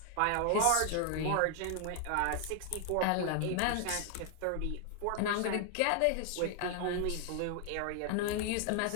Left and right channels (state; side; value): different; both; correlation 0.00